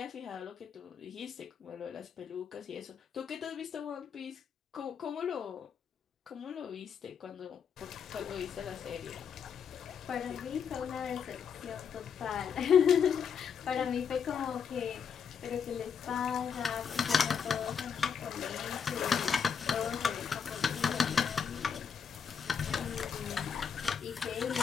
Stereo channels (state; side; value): quieter; right; 7.0 dB